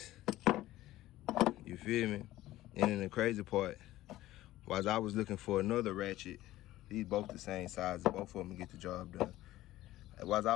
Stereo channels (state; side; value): quieter; right; 15.7 dB